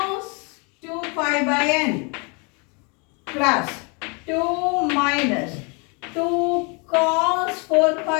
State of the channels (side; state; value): right; quieter; 32.9 dB